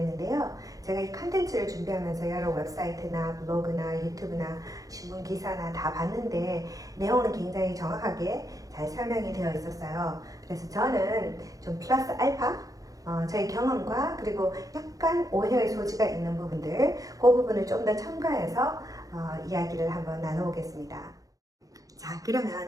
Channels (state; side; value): late; left; 0.17 ms